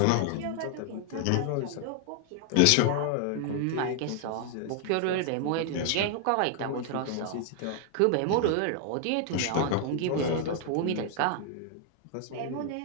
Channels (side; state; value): both; different; correlation 0.00